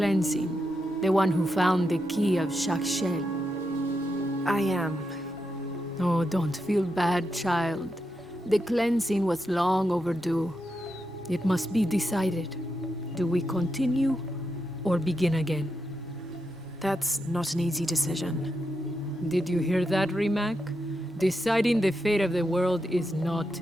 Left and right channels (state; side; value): normal; both; correlation 0.85